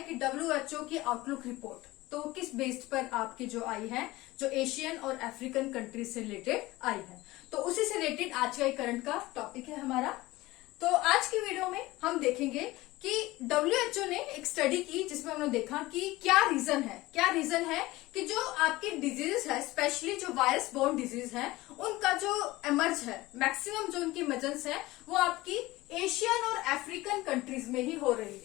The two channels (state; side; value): quieter; right; 19.1 dB